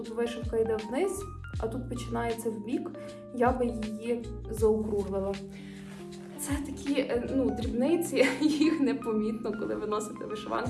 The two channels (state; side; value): identical; both; correlation 1.00